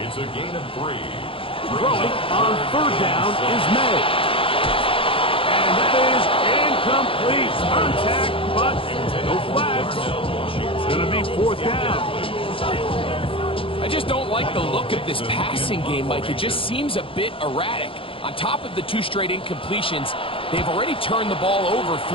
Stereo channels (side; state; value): right; late; 0.26 ms